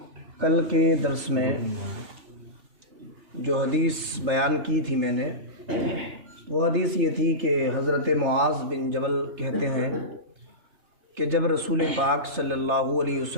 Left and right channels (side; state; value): left; late; 3.3 ms